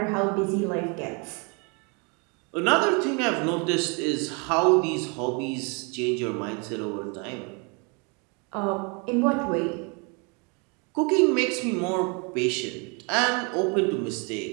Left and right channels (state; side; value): quieter; left; 33.0 dB